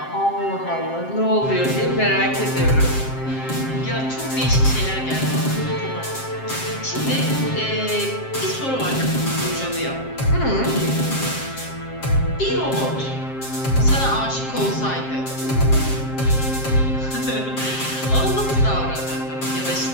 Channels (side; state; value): right; late; 7.5 ms